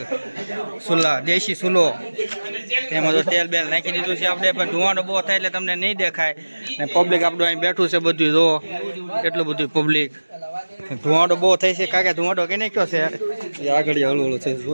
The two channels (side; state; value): both; inverted; correlation -1.00